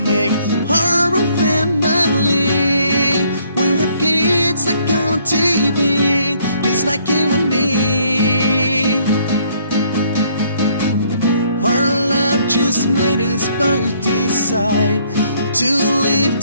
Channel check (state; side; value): inverted; both; correlation -0.65